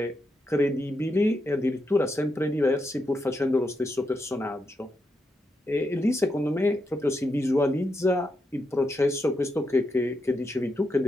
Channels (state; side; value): normal; both; correlation 0.84